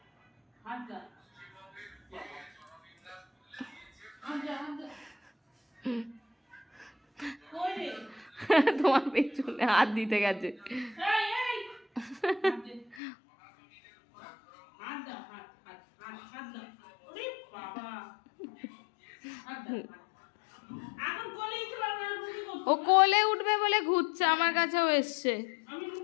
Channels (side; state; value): right; drops out; at 13.0 s